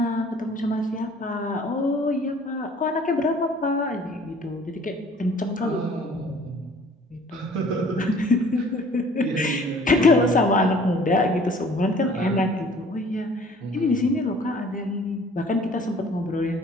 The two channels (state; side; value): normal; both; correlation 0.53